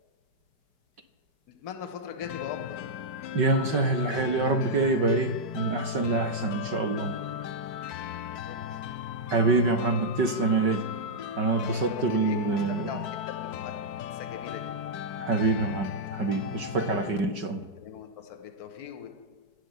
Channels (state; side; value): late; left; 5.3 ms